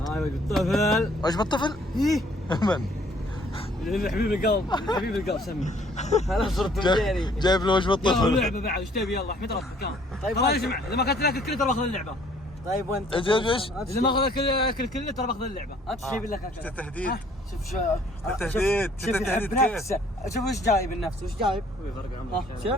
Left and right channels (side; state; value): both; normal; correlation 0.59